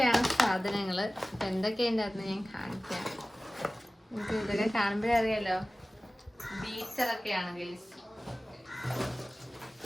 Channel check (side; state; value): both; normal; correlation 0.97